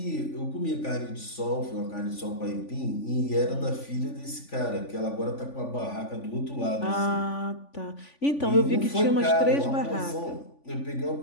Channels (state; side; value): late; right; 3.5 ms